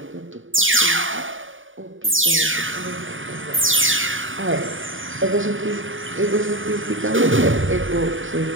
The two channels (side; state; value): left; late; 0.57 ms